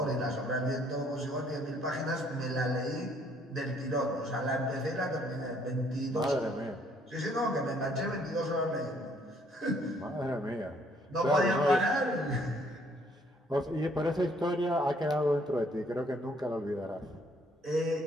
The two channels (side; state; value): both; normal; correlation 0.64